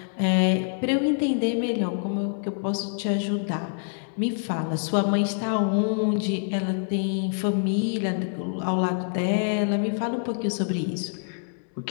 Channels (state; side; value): silent; right; digital silence